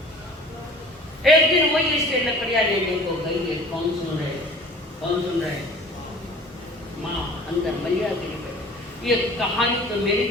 एक दिन वही इससे लकड़ियाँ लेने को गई है, कौन सुन रहे माँ अंदर मलिया गिरी गई। ये कहानी तो मेरे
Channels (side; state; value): both; normal; correlation 0.45